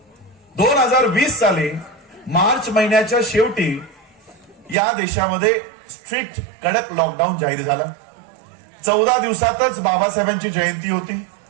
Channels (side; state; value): left; drops out; at 4.8 s